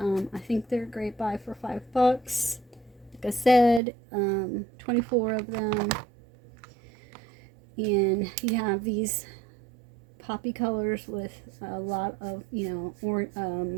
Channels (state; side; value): drops out; left; at 3.8 s